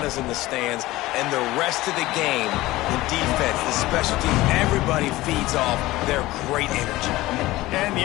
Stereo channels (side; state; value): right; quieter; 18.1 dB